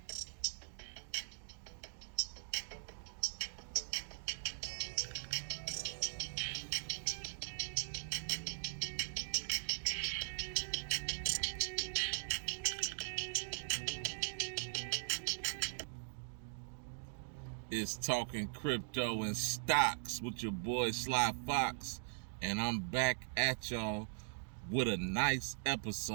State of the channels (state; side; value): silent; left; digital silence